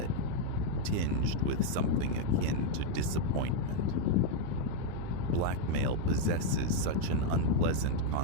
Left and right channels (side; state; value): both; different; correlation 0.01